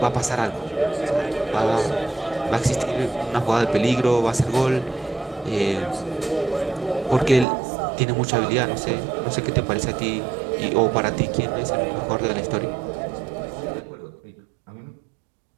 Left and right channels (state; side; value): drops out; left; at 7.5 s